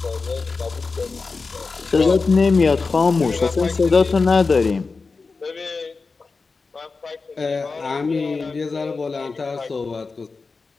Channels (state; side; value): quieter; right; 4.3 dB